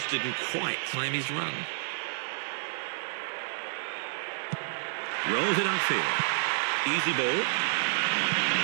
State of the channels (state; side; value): silent; left; digital silence